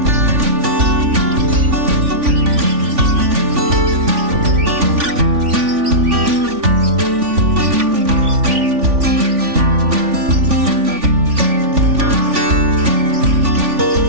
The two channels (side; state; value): left; late; 3.5 ms